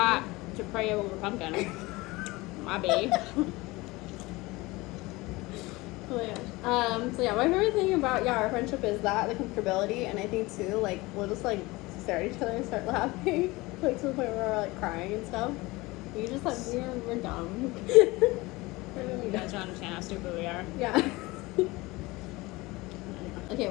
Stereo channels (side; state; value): right; quieter; 21.9 dB